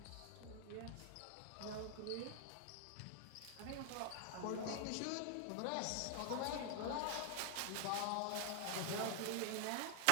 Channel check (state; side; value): different; both; correlation 0.00